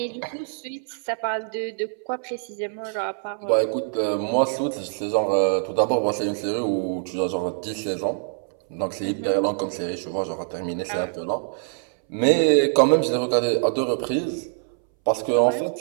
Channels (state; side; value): silent; left; 61 dB below the other